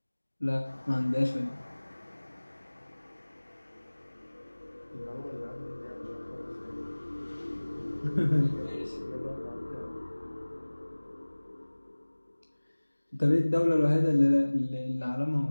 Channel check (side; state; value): both; inverted; correlation -1.00